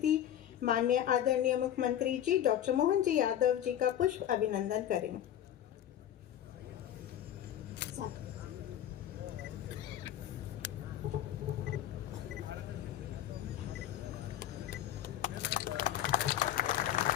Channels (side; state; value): right; quieter; 11.2 dB